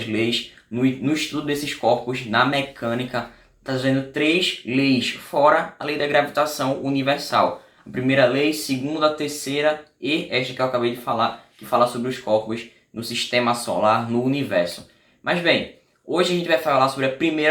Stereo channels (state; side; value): identical; both; correlation 1.00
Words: leis no estudo desses corpos, na mecânica, trazendo três leis, fora a lei da gravitação universal. A primeira lei, segunda, a terceira e esta que eu acabei de falar, que fala sobre os corpos no sistema solar, no universo. Mas bem, hoje a gente vai falar sobre a